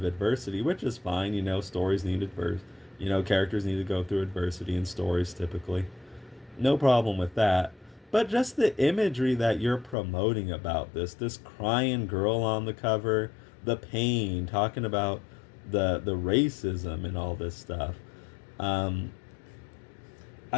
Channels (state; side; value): drops out; right; at 10.0 s